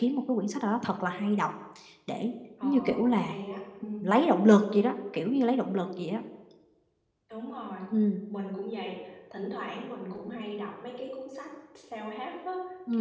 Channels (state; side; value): identical; both; correlation 1.00